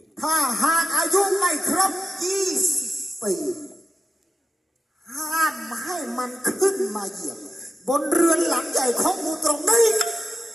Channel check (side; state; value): both; normal; correlation 0.91